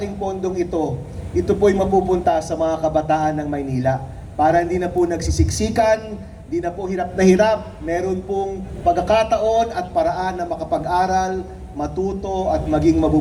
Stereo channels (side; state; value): both; identical; correlation 1.00